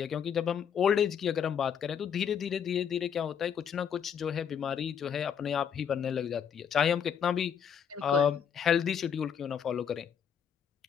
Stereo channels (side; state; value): right; quieter; 7.9 dB